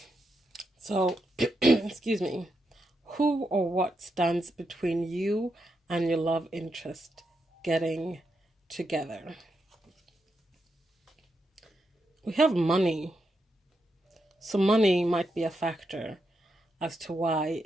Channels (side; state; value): both; normal; correlation 0.84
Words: So, excuse me, who or what stands between you and your love interest getting together? We have money. So money might be a factor as to why